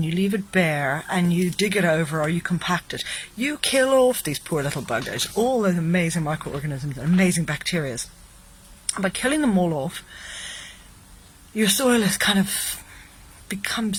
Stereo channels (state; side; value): identical; both; correlation 1.00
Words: you leave it bare and you dig it over or you compact it, you kill off these poor little buggers, all those amazing microorganisms and amazing bacteria. And by killing them all off, your soil is kind of